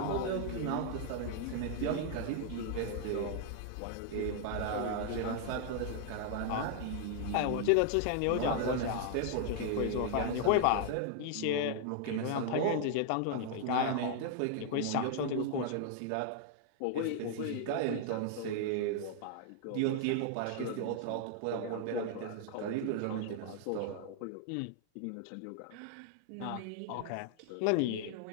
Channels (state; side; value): different; both; correlation 0.00